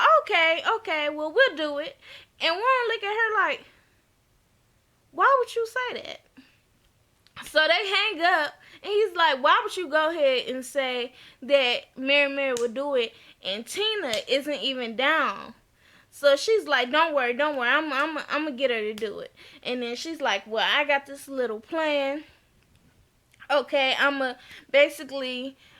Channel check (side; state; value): both; identical; correlation 1.00